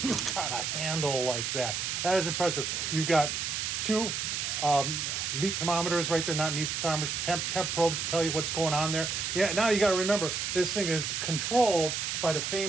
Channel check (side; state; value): right; noise; hiss, 2 dB below the sound